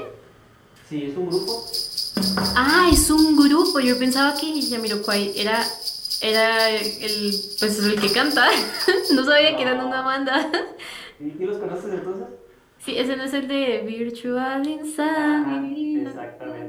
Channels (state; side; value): identical; both; correlation 1.00